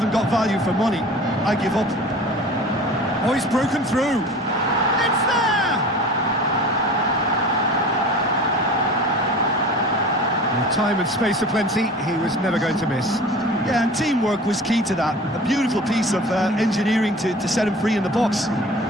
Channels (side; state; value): both; normal; correlation 0.40